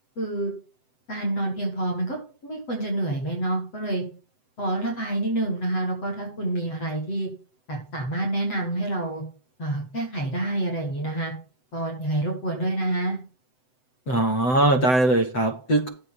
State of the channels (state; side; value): late; right; 7.8 ms